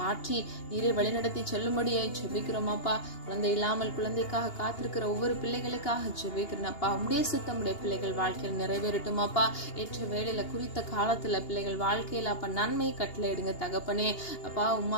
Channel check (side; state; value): right; late; 2.8 ms